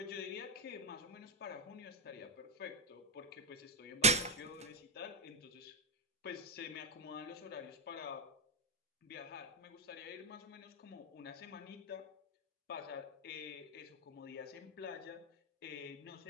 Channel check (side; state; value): both; normal; correlation 0.02